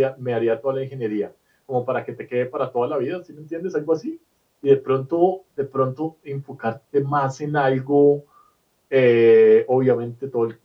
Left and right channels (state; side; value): identical; both; correlation 1.00